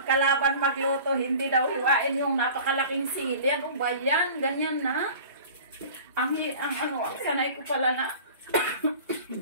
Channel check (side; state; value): both; inverted; correlation -0.42